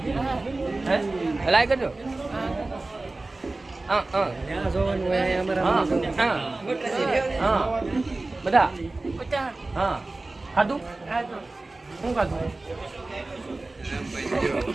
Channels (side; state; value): left; quieter; 3.1 dB